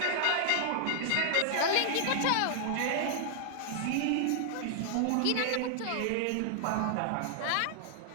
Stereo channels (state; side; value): different; both; correlation 0.00